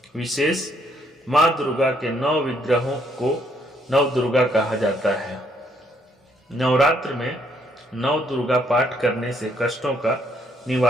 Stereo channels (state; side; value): normal; both; correlation 0.70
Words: विशेष माँ दुर्गा के 9 विग्रहों को नव दुर्गा कहा जाता है। नवरात्र में नव दुर्गा पाठ करने से कष्टों का